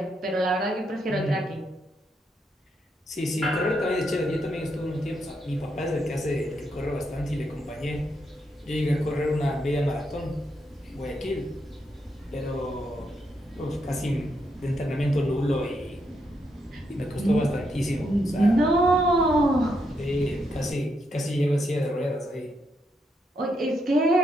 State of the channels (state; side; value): normal; both; correlation 0.79